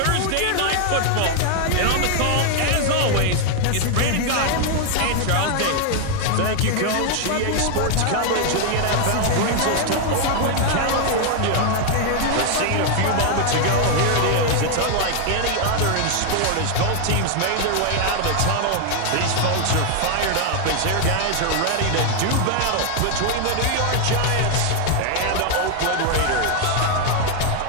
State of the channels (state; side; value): different; both; correlation 0.00